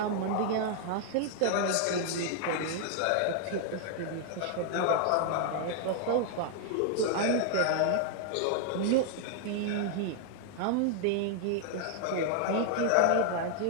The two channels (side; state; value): both; different; correlation 0.00